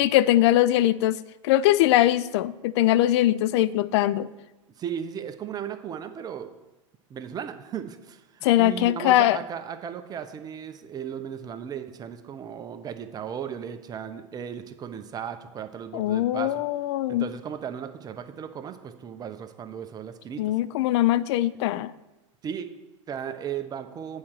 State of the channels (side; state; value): right; quieter; 9.7 dB